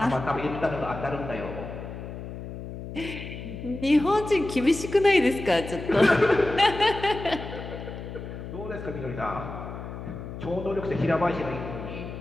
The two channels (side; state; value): left; noise; hum, 9 dB below the sound